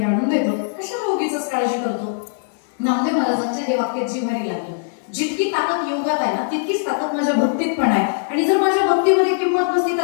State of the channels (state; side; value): silent; right; digital silence